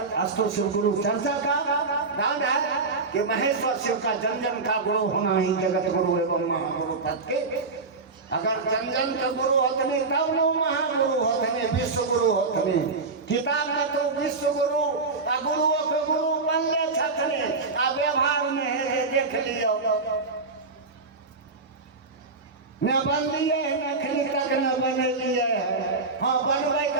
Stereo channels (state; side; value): quieter; left; 4.0 dB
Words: अस्तु शिव गुरु चर्चा का दान है कि महेश्वर शिव का जन जन का गुरु होना ही जगत गुरु एवं महागुरु पद के। अगर जन जन के गुरु होतने तब नो महागुरु होतने, विश्व गुरु होतने। किताब में तो विश्व गुरु आ गुरुओं के गुरु बनले छथने, आ व्यवहार में है देख लियो न बन लिए अखनी तक न बने लिए। हाँ, बनवे